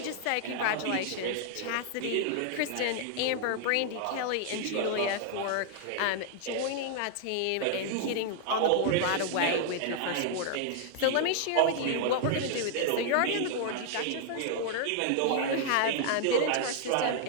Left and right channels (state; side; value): different; both; correlation 0.00